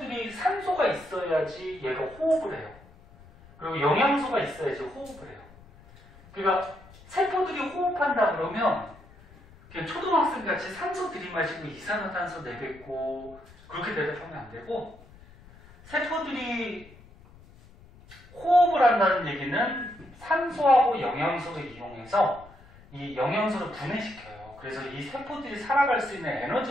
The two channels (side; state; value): left; noise; rumble, 23 dB below the sound